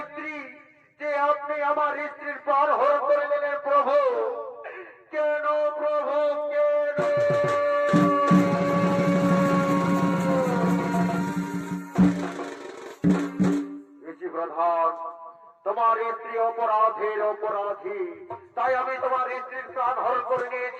স্ত্রী, যে আপনি আমার স্ত্রীর প্রাণ হরণ করে নিলেন প্রভু? কেন প্রভু, কেন? ঋষি প্রধান, তোমার স্ত্রী অপরাধের অপরাধী, তাই আমি তোমার স্ত্রীর প্রাণ হরণ করে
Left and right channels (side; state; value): both; identical; correlation 1.00